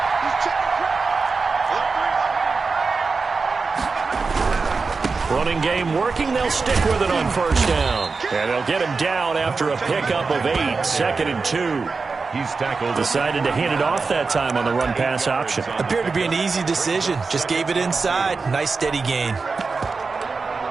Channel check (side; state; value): left; quieter; 4.4 dB